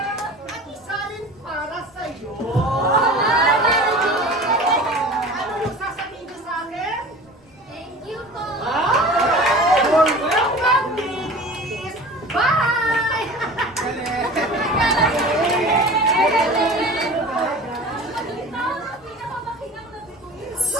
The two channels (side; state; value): both; normal; correlation 0.39